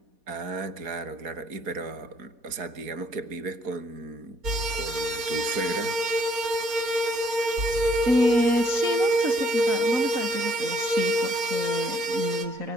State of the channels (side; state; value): left; late; 4.1 ms